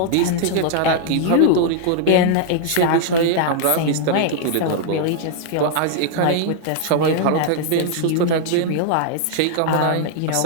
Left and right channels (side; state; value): both; different; correlation 0.00